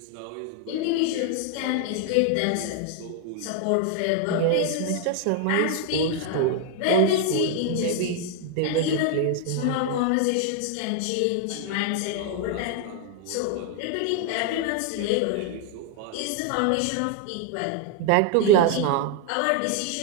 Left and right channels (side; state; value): both; different; correlation 0.00